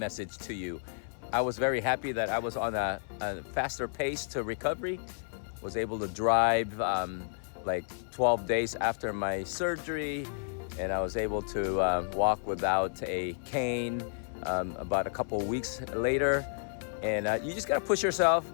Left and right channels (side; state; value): right; silent; 57 dB below the other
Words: to you. I was very happy that I was on a faster pace to recovery. Was able to drive like 12 days after my surgery, and I was able to walk without a cane about a couple weeks later. And you just gotta push yourself,